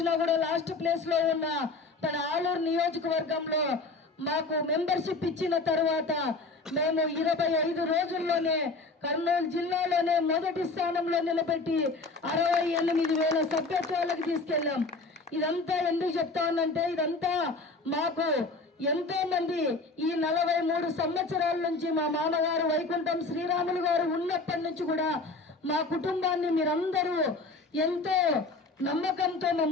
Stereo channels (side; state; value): right; quieter; 3.5 dB